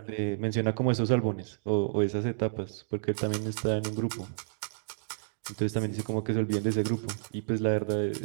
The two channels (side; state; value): left; silent; digital silence